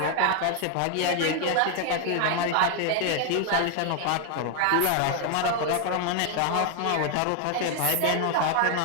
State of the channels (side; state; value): both; different; correlation 0.00